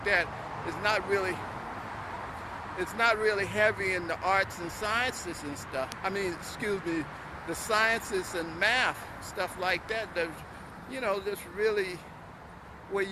that. It's not really heavy in the arts and sciences and stuff. I mean, excuse me, the sciences and math, stuff like that. There's, you know, there's really where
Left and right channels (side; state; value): both; identical; correlation 1.00